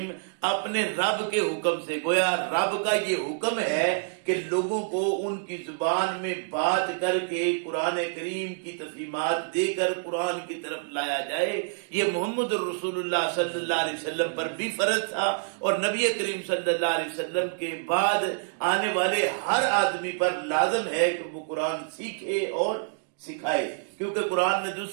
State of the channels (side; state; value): left; silent; digital silence